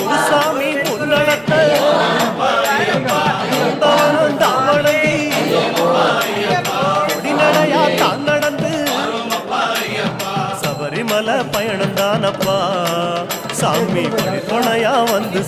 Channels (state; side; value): identical; both; correlation 1.00